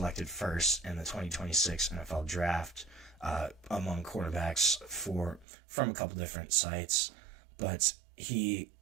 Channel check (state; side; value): drops out; left; at 5.5 s